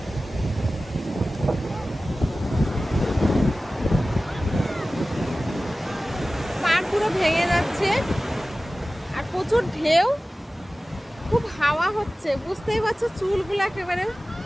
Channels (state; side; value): normal; both; correlation 0.96